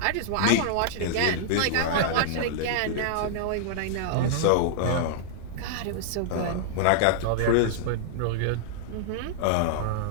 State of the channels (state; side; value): different; both; correlation -0.01